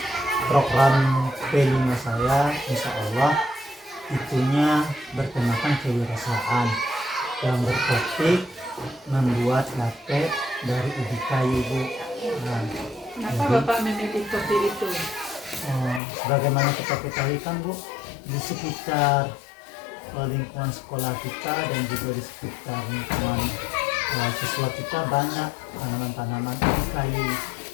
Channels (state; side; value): drops out; right; at 16.0 s